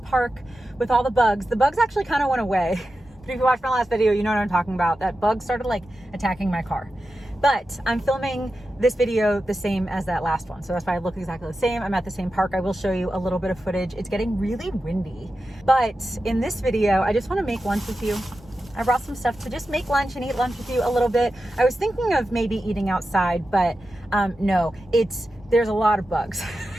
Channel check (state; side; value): normal; both; correlation 0.91